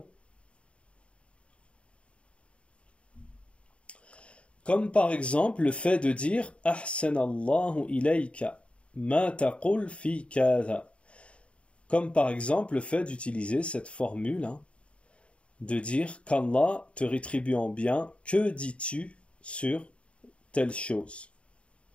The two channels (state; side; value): late; right; 0.060 ms